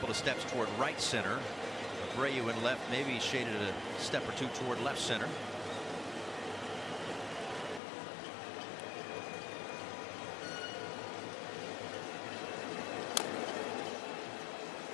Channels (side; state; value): right; drops out; at 7.8 s